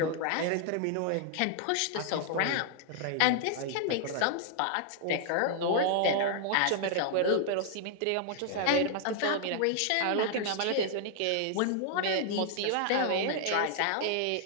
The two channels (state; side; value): different; both; correlation 0.00